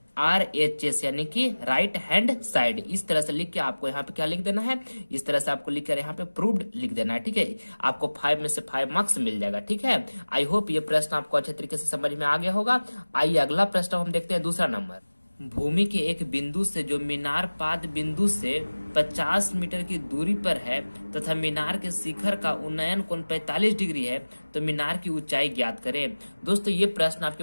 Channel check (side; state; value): both; inverted; correlation -1.00